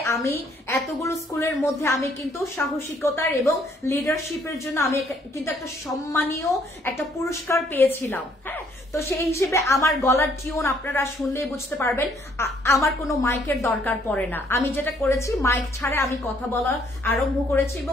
আমি এতগুলো স্কুলের মধ্যে আমি কিন্তু সাহসিকতার এবং লিডারশিপের জন্য আমি কিন্তু একটা সম্মানীয় একটা পুরস্কার পেয়েছিলাম। হ্যাঁ, তো সেই হিসেবে আমার গলার টিউন আপনারা শুনলেই বুঝতে পারবেন আমার কোনো মাইকের দরকার পড়ে না। আমি যেটা করেছি মাইক ছাড়া আমি কথা বলা আরম্ভ করেছি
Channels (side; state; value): both; normal; correlation 0.66